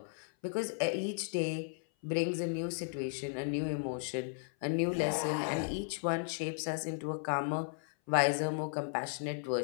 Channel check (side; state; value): right; silent; 54 dB below the other